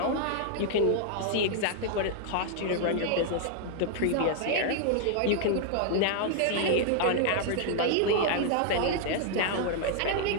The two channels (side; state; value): both; different; correlation -0.01